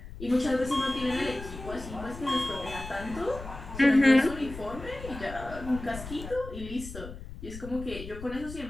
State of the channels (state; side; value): noise; left; rumble, 12 dB below the sound